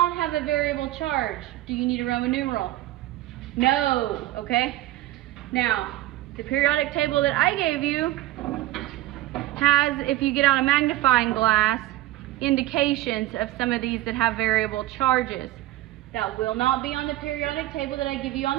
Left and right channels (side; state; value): left; quieter; 15.8 dB